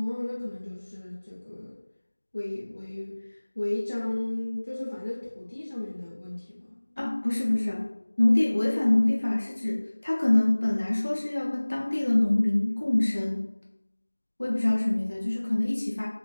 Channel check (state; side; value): inverted; both; correlation -1.00